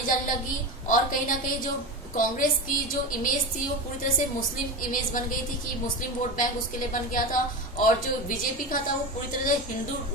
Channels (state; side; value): normal; both; correlation 0.23